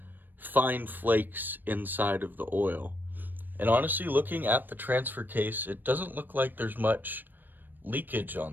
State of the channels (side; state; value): left; late; 0.091 ms